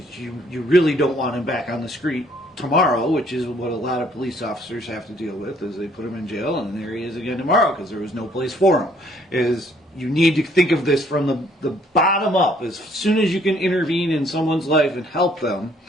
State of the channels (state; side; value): normal; both; correlation 0.63